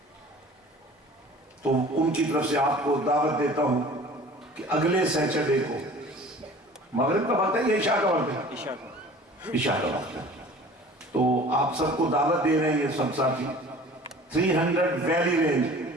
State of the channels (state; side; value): normal; both; correlation 0.45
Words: تو ان کی طرف سے آپ کو دعوت دیتا ہوں کہ اگلے سیٹرڈے کو مغرب کا وقت ہے یا عشاء کا وقت ہے؟ عشاء کا عشاء کا وقت ہے، تو آپ سب کو دعوت دے رہے ہیں یہ سب ساتھی 300 ویلی رینج